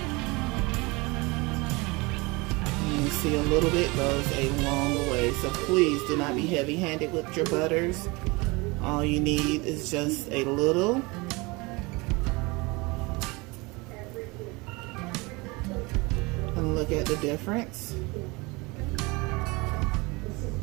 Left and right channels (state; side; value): quieter; left; 25.2 dB